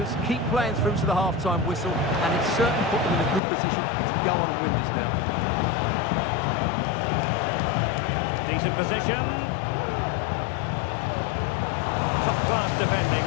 keep playing through to the half-time whistle, and it's certainly put them in a good position to go on and win this now. Decent position. Top-class defending.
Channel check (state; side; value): drops out; right; at 3.4 s